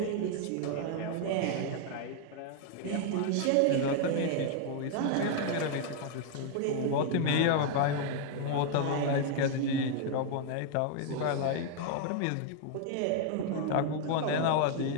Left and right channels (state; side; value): different; both; correlation 0.00